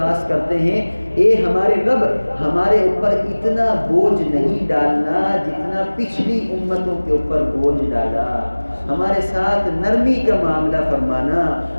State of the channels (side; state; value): both; inverted; correlation -1.00